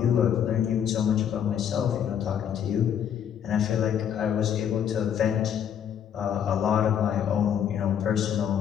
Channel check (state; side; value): quieter; right; 8.9 dB